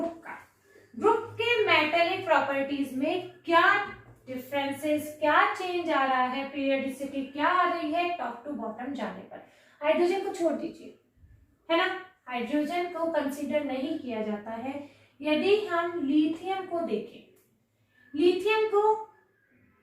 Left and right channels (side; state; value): both; identical; correlation 1.00